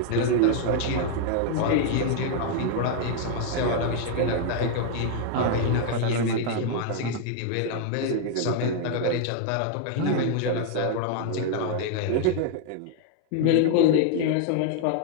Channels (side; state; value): both; different; correlation 0.00